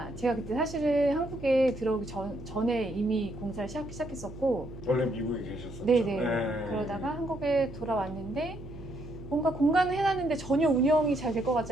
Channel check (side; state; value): right; noise; hum, 14 dB below the sound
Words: 제가 그때 사실은 한국에 들어오기 전에 이미 공사를 시작했었고 원래 미국에 계셨었죠. 네네. 그러다가 한국에 돌아왔는데 뭔가 공간을 해놨는데 전혀 운영이 잘 될 것